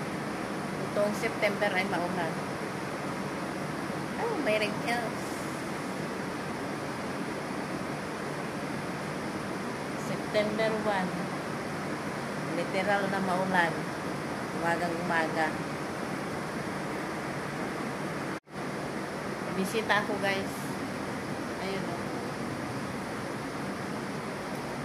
Itong September ay maulan. Oh, may wrinkles. September 1. Literal na maulan. Umagang umaga. Bisita ako guys. Ayun o.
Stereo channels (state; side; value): identical; both; correlation 1.00